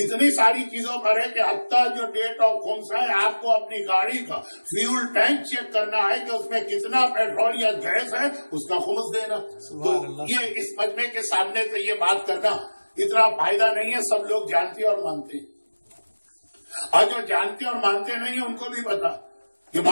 ساری چیزوں پر ہے کہ حتیٰ جو ڈیٹ آف خمس ہے آپ کو اپنی گاڑی کا فیول ٹینک چیک کرنا ہے کہ اس میں کتنا پیٹرول یا گیس ہے، اس کا خمس دینا. تو یہ اس مجمع کے سامنے سے یہ بات کرنا اتنا فائدہ نہیں ہے. سب لوگ جانتے اور مانتے ہیں، اور جو جانتے اور مانتے نہیں ہیں ان کو بھی پتا کہ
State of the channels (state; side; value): inverted; both; correlation -1.00